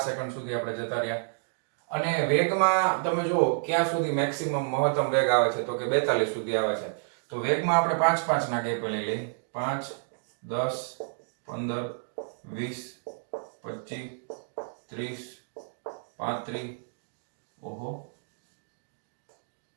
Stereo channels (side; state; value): left; silent; digital silence